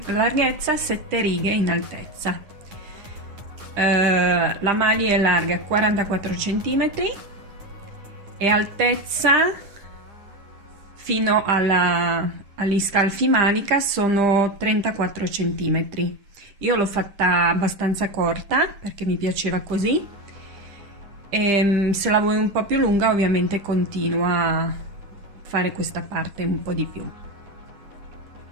larghezza, 7 righe in altezza. La maglia è larga 44 cm e altezza fino agli scalfi manica sono 34 cm. Io l'ho fatta abbastanza corta perché mi piaceva così, e se la vuoi un po' più lunga ovviamente continua a fare questa parte un po' di più.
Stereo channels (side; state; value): left; late; 10 ms